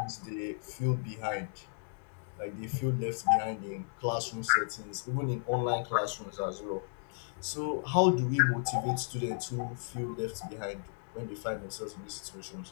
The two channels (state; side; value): silent; right; digital silence